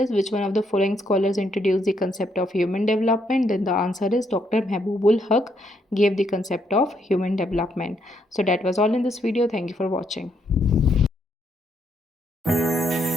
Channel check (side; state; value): both; normal; correlation 0.74